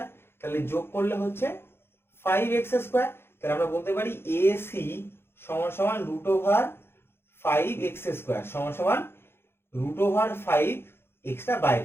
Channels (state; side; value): late; right; 0.11 ms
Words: তাহলে যোগ করলে হচ্ছে 5x স্কোয়ার। তাহলে আমরা বলতে পারি এসি সমান সমান রুট ওভার 5x স্কোয়ার সমান সমান রুট ওভার 5x টা